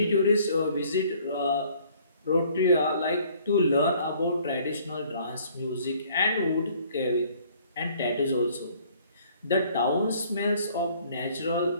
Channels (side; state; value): both; inverted; correlation -0.58